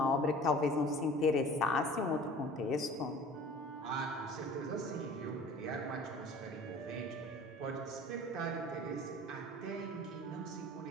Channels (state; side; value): normal; both; correlation 0.44